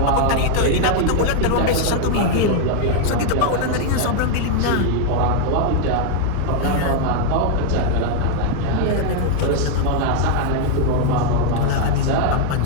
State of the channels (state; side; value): different; both; correlation 0.00